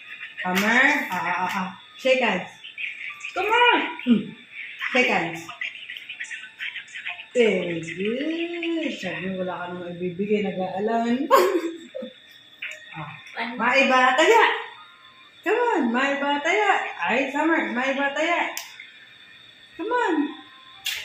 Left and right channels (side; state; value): both; identical; correlation 1.00